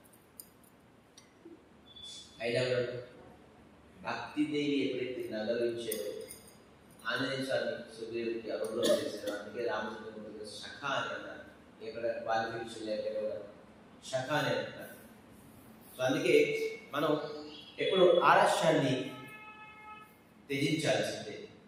అయినా భక్తిదేవి ఎప్పుడైతే నగరించారో ఆంజనేయ స్వామి సుగ్రీవుడికి అనుగ్రహం చేశారు. అందుకే రామచంద్రమూర్తి శఖ అని అన్నారు, ఎక్కడ క్వాలిఫికేషన్ లేకపోతే శఖ అని అంటారు. సో అందుకే మనం ఎప్పుడు ఆలస్యాన్ని త్యజించాల్సిందే.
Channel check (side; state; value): both; identical; correlation 1.00